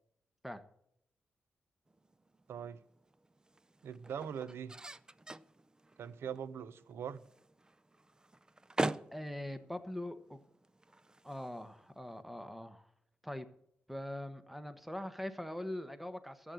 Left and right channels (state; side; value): normal; both; correlation 0.89